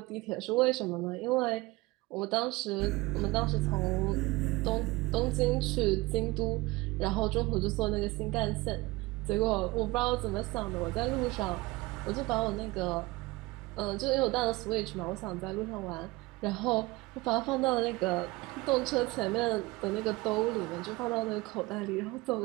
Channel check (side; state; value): left; quieter; 21.8 dB